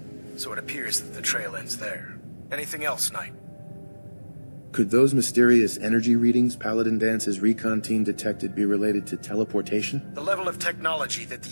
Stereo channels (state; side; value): inverted; both; correlation -1.00